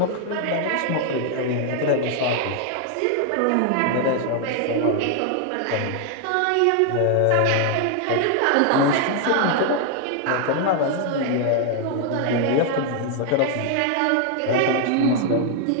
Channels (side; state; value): both; different; correlation 0.00